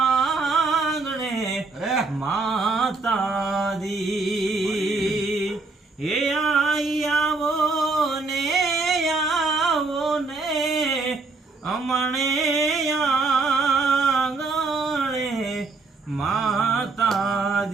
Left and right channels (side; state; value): left; quieter; 3.7 dB